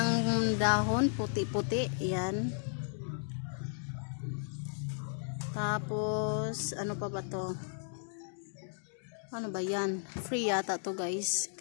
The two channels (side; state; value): right; silent; digital silence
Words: dahon, puti-puti. Ayan. Tapos, ano pa ba to? Ano ba yan? Free yata to guys.